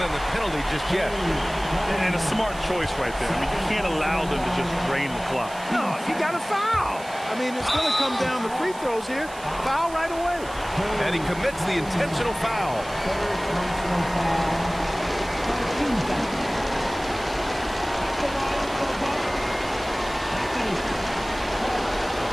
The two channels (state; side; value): noise; right; hiss, 18 dB below the sound